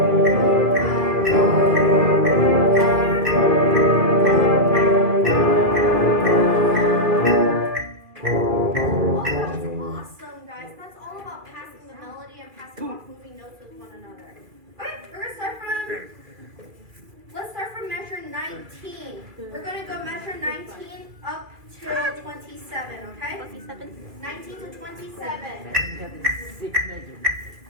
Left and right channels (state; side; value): late; left; 2.4 ms